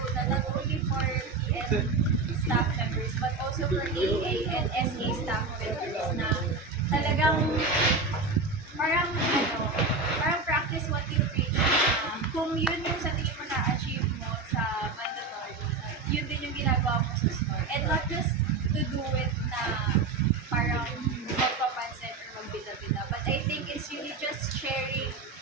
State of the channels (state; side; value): quieter; left; 3.9 dB